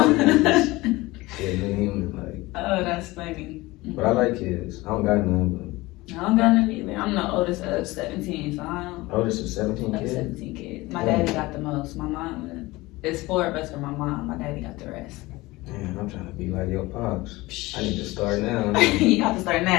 She's a new human, like. Oh, that's funny. But I like kids. I don't got none, but. I don't got none either. I'm the oldest of 17, so I don't. Oldest of 17 kids? 17 kids. My daddy got the most. My mom, there's 4 of us for my mom. My daddy got the rest. Man, I'm trying to be like your pops. I need to start now. You have to start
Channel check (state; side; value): quieter; right; 20.5 dB